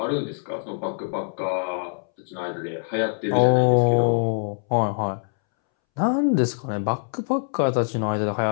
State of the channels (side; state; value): right; silent; 63 dB below the other